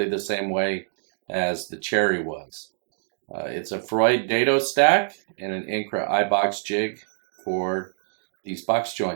the same way as the cherry was. It's a Freud dado stack and an Incra iBox jig for these box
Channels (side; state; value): left; silent; digital silence